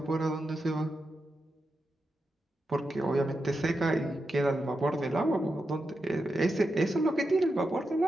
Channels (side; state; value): both; normal; correlation 0.88